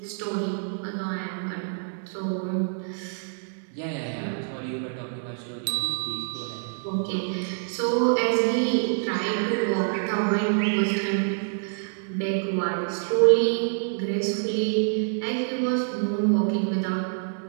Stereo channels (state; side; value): silent; left; digital silence